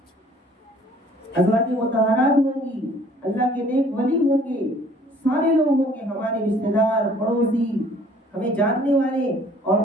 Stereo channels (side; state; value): both; normal; correlation 0.56